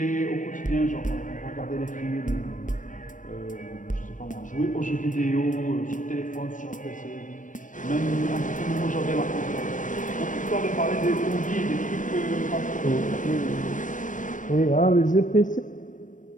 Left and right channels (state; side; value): late; right; 0.37 ms